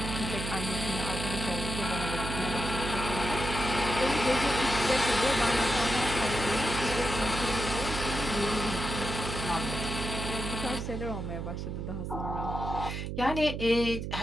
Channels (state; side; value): noise; right; hum, 5 dB below the sound